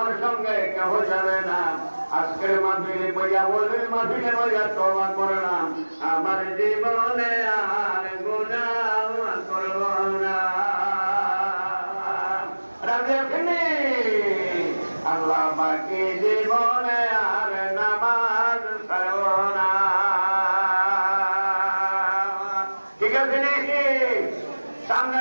সঙ্গে কেউ যাবে না। আজকের মাহফিলে বইয়া বলবেন, মাহফিলে বইয়া তওবা করলাম, আমার জীবনে আর গুনাহ করব না। আল্লাহ বাকি জীবনে আর নামাজ পড়ব না। ঠিক আছে নাকি? সামনে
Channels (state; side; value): inverted; both; correlation -1.00